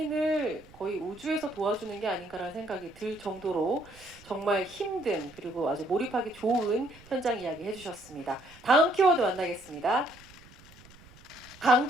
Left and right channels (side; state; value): right; noise; rumble, 23 dB below the sound